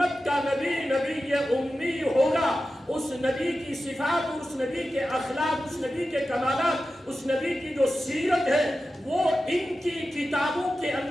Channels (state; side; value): normal; both; correlation 0.93